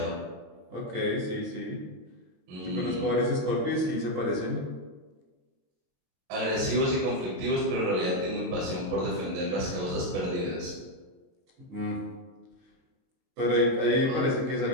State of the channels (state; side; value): late; left; 22 ms